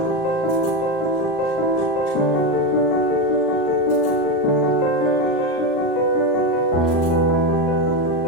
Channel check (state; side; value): late; right; 36 ms